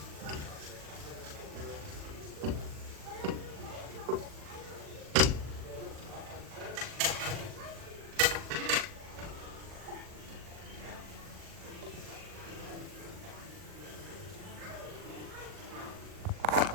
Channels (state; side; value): late; left; 40 ms